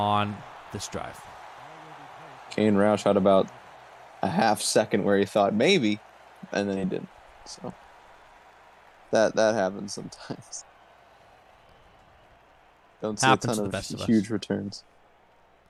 this drive. Kane Roush had about a half second where he thought maybe, and then he didn't. So that happens sometimes. Don't see Happens a to ton the best of of huge returns.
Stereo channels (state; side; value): identical; both; correlation 1.00